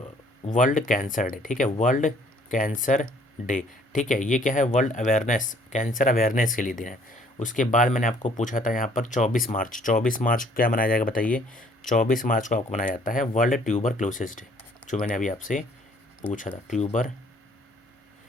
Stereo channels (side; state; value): both; normal; correlation 0.59